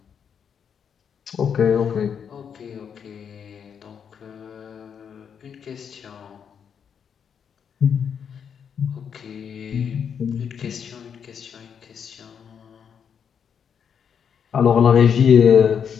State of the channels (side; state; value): right; quieter; 7.4 dB